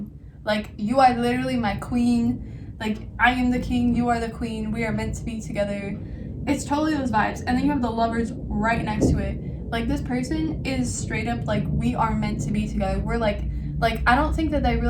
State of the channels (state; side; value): identical; both; correlation 1.00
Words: Like, you are literally my queen. Like, I am the king, you are the queen. We are meant to be together. It's totally those vibes. And then you have the Lovers right next to it. Like, this person is straight up like, we are meant to be together. We're like, I don't think that they